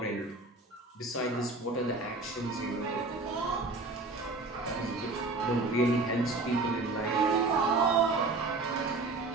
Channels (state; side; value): quieter; left; 3.4 dB